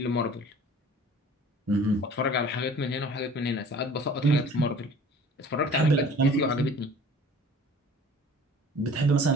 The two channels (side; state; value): both; normal; correlation 0.46